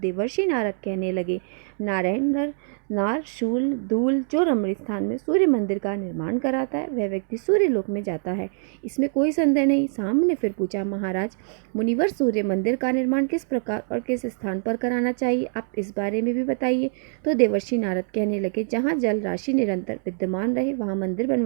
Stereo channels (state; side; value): silent; left; 59 dB below the other